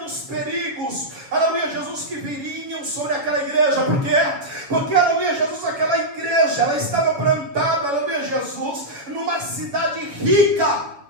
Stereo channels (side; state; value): left; late; 7.1 ms